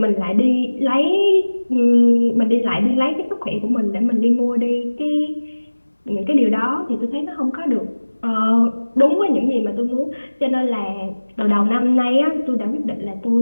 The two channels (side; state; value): both; inverted; correlation -1.00